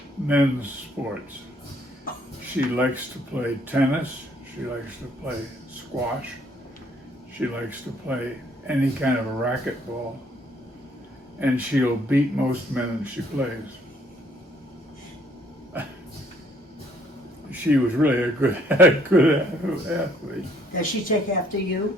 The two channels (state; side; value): normal; both; correlation 0.64